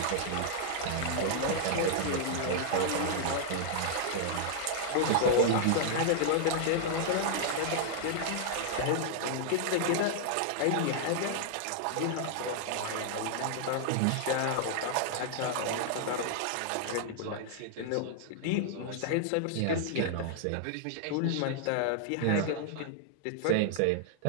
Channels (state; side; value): different; both; correlation -0.01